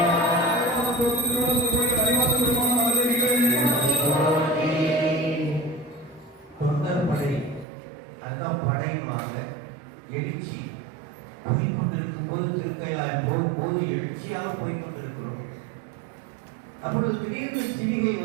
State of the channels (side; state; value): left; drops out; at 7.7 s